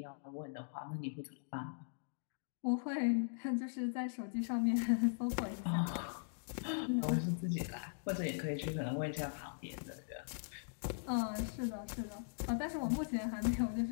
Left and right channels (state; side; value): silent; right; digital silence